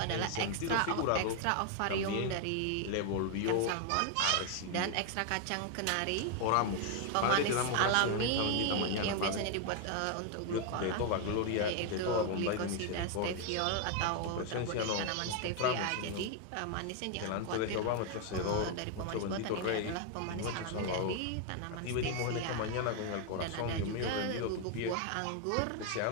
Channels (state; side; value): different; both; correlation 0.01